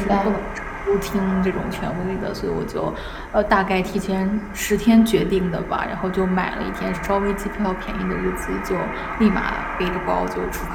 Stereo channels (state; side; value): identical; both; correlation 1.00